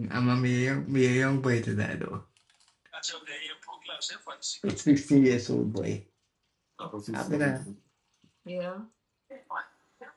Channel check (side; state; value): both; identical; correlation 1.00